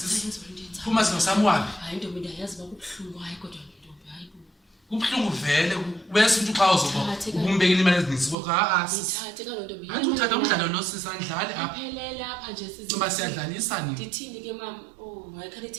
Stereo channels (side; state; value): left; drops out; at 8.3 s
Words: Phuma sino samwabi. Hayi ntombi ndayazi bakubhlungu hayi kodwa ntombi hayi bo. Kubhlungu vele bese umuntu xa uzoba ukumbekela imali ezininzi kodwa Ngithathe kalo ntombi. Antu uthatha umdlalo lo sisandlali apha. Aphelele apha nje sisi. Ngoba siyadlalisa nini? Ndithini ke mama? Oh, hayi khale